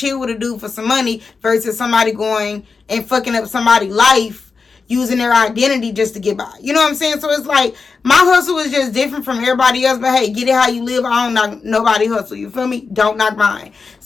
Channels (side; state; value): right; quieter; 4.8 dB